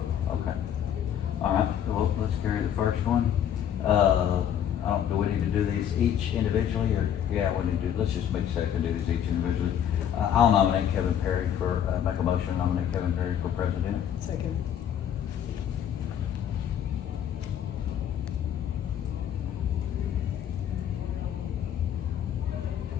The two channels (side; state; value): right; quieter; 9.6 dB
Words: okay. All right, well, let's carry the first one. Do we need to do these each individually, or, yeah, we need to, let's just make a second, do these each individually. I'll nominate Kevin Perry for, make a motion, to nominate Kevin Perry for president. Second.